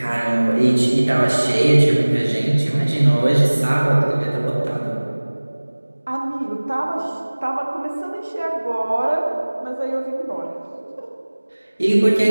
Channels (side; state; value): both; inverted; correlation -1.00